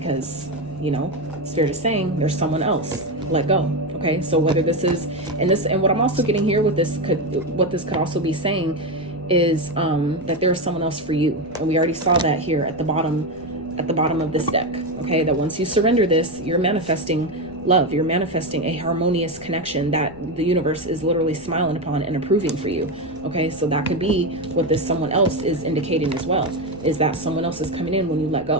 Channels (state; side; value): noise; left; rumble, 23 dB below the sound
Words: you know, Spirit is saying there's someone else. Let go. Okay. So whether this is, and what I'm also getting here with this what this could also be saying is that there's someone else for you. And we already saw that here at the bottom of this deck. Okay. That once you surrender this, you're manifesting love. You're manifesting a harmonious connection that the universe is literally smiling upon and approving for you. Okay. So that could be what this someone else is indicating as well, is that someone else is coming in when you let